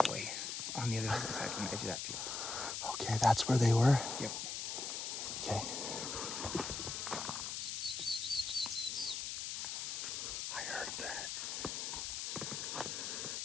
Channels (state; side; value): noise; left; hiss, 3 dB below the sound